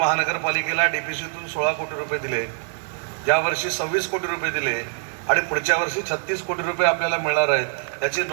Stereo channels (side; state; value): left; silent; digital silence